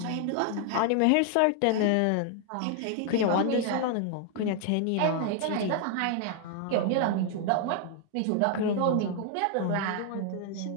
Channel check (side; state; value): both; different; correlation 0.00